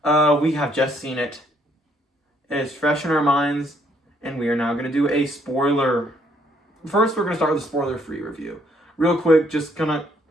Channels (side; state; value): both; normal; correlation 0.68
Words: We have just seen it. It is fresh in our minds, and we are now going to do a spoiler. First, we're going to start with a spoiler-free review. Real quick, just kind of